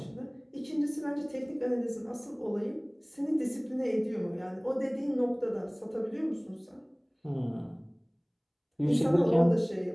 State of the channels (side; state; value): both; identical; correlation 1.00